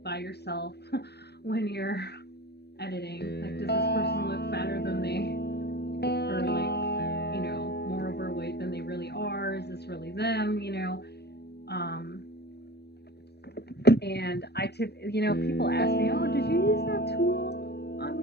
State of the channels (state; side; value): late; right; 0.48 ms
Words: by yourself when you're editing. Like, does this person look fatter than they, or like, more overweight than they really are? Is this really them? And people ask me, oh, did you use that tool on